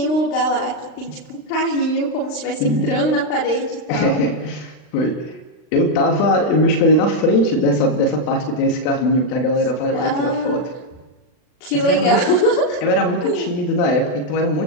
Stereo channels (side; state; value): right; late; 39 ms